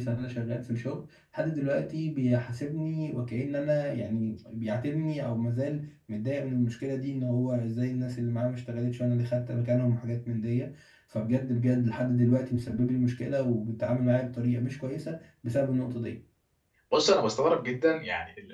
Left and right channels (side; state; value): both; identical; correlation 1.00